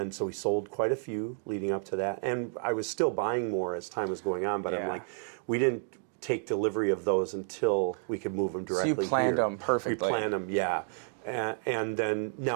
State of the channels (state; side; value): silent; left; digital silence